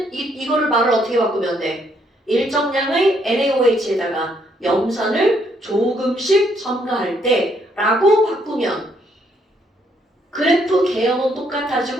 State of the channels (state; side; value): normal; both; correlation 0.71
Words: 이거를 말을 어떻게 바꾸면 돼? 일정량의 NaOH에다가 염산을 조금씩 첨가할 때 라고 바꾸면 그래프 개형은